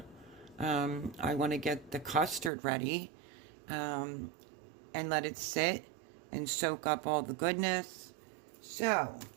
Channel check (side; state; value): left; drops out; at 2.5 s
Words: I want to get the custard ready and let it sit and soak up all the goodness. So